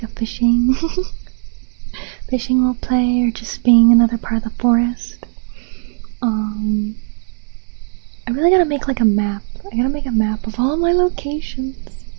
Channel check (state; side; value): silent; left; digital silence